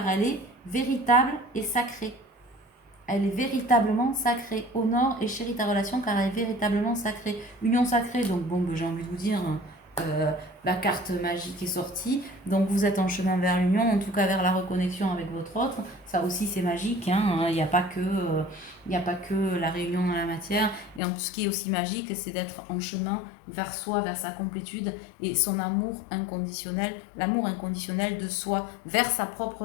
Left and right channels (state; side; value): drops out; right; at 21.0 s